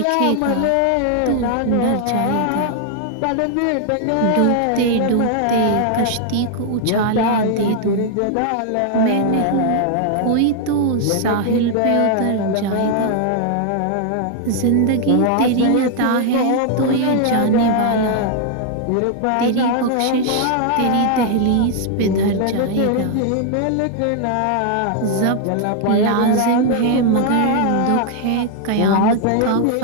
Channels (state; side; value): different; both; correlation 0.00